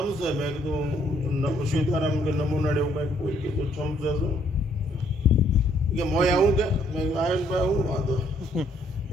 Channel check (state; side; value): normal; both; correlation 0.68